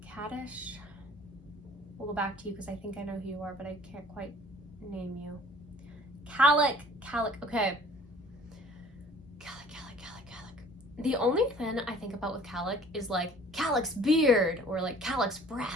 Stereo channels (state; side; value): normal; both; correlation 0.51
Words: Kaddish. We'll go back to you because I think I know who you are, but I can't quite name you. Calic. Okay. Calic. The only thing I think about with Calic is like Calic's beard or like Calic's